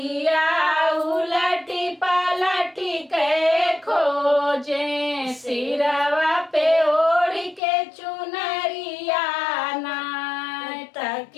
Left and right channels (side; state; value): right; drops out; at 7.6 s